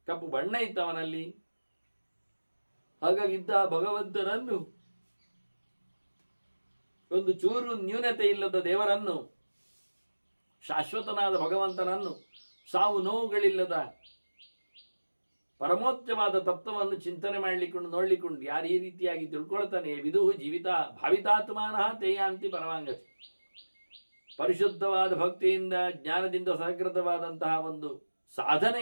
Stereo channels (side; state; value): both; inverted; correlation -1.00